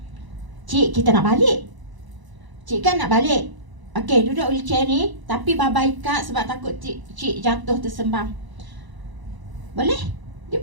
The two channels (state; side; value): late; left; 1.0 ms